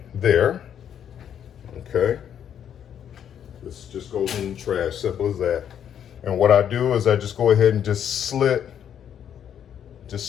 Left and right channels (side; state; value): right; quieter; 9.1 dB